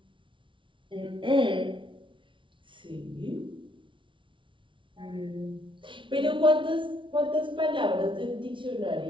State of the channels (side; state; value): left; late; 0.25 ms